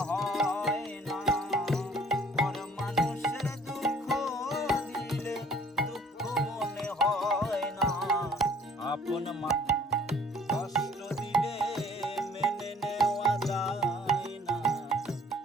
হয় না, পর মানুষের দুঃখ দিলে দুঃখ মনে হয় না, আপন মানুষ কষ্ট দিলে মেনে নেওয়া যায় না,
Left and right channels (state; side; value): normal; both; correlation 0.56